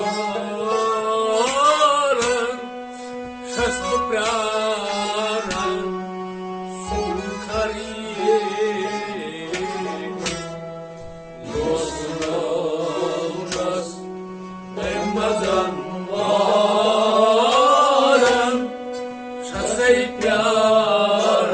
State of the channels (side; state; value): both; identical; correlation 1.00